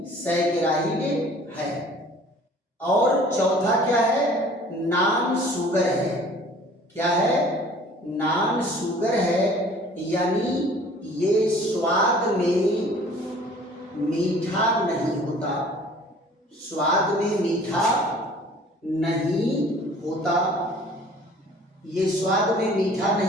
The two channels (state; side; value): normal; both; correlation 0.50